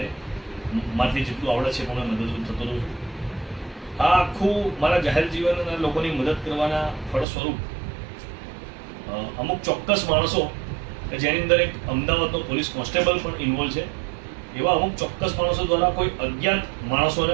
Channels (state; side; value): drops out; left; at 7.2 s